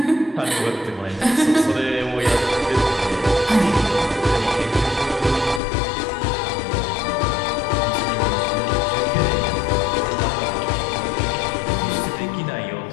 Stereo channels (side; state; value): right; drops out; at 5.6 s